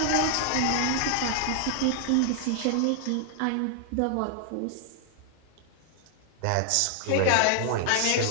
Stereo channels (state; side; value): different; both; correlation 0.00